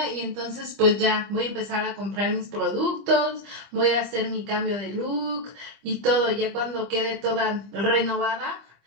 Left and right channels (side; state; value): left; late; 25 ms